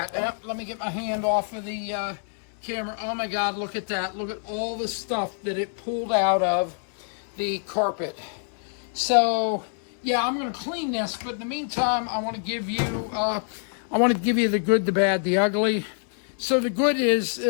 Let me get my hand off of the camera. Oh my god, look at that. Look at all the stuff that it pulled out of the carpet. So yeah, I'm going to clean this, but in the meantime, I want to give you the good, the bad, the ugly. So the good is,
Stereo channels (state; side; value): silent; right; 61 dB below the other